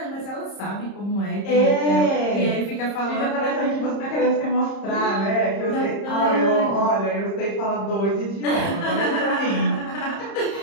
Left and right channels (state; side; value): late; right; 30 ms